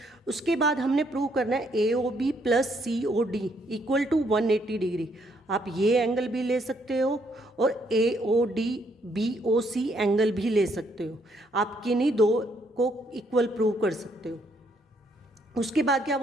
उसके बाद हमने प्रूव करना है A O B plus C O D equal to 180 degree. आप ये एंगल भी ले सकते हो और A O D B O C angle भी ले सकते हो। आप किन्हीं दो को इक्वल प्रूव कर सकते हो। उसके बाद क्या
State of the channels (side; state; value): both; normal; correlation 0.71